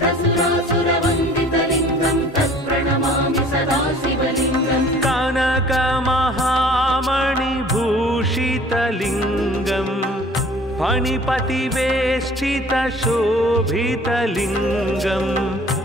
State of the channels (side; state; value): both; normal; correlation 0.50